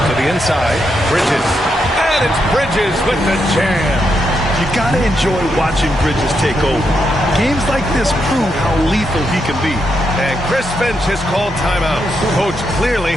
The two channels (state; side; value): normal; both; correlation 0.81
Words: To the inside, Bridges. And it's Bridges with the jam. You got to enjoy watching Bridges take over. Games like this prove how lethal he can be. And Chris Finch has called timeout. Coach clearly